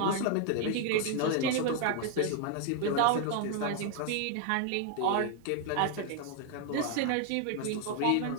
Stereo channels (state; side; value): different; both; correlation 0.00